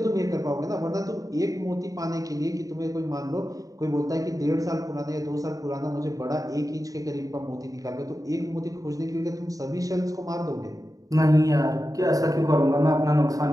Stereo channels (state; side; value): late; left; 0.17 ms